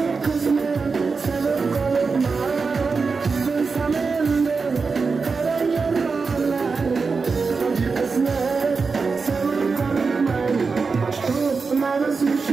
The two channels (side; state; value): left; quieter; 4.7 dB